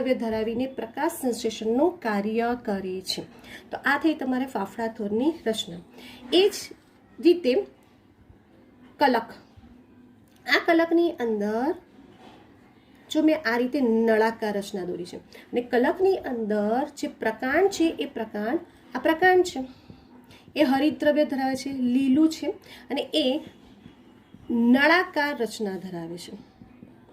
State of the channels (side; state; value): both; identical; correlation 1.00